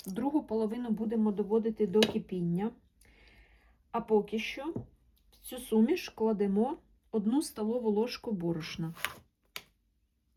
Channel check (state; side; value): identical; both; correlation 1.00